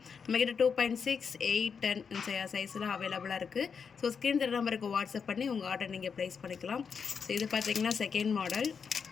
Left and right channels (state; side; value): quieter; right; 6.1 dB